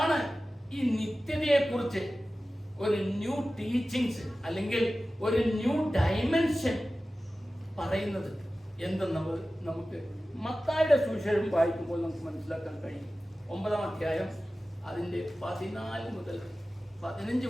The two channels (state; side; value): normal; both; correlation 0.95